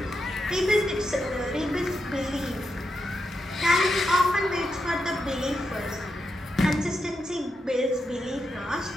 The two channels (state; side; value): normal; both; correlation 0.85